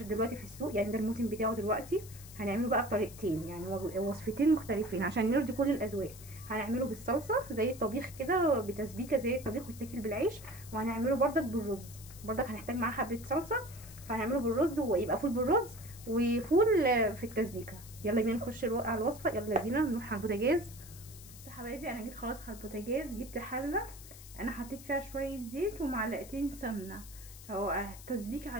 دلوقتي في السوق، يعني ده الموسم بتاعه دلوقتي. هنعمله بقى بطريقتين، يعني وصفتين مختلفين عشان نرضي كل الاذواق. هنعمله بالصلصة زي الطبيخ كده، بتسبيكة زي الطبيخ ويتاكل بالعيش، وهنعمله بردك بالرز. بردك هنحتاج معاه حبة صلصة، فهنعمله بالرز ويبقى فول بالرز وفول في التسبيكه. يلا بينا نخش على الوصفه، يلا بينا نروح على البوتاجاز. بصوا يا حبايبي، انا جيت خلاص على البوتاجاز، جبت حله انا حطيت فيها شويه زيت ومعلقتين سمنه. هو تسبيكه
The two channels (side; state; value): left; noise; hiss, 17 dB below the sound